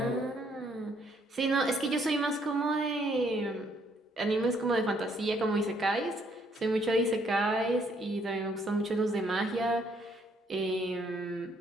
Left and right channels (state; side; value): normal; both; correlation 0.68